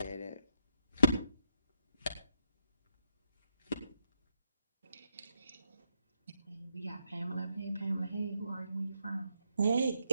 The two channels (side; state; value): both; inverted; correlation -0.79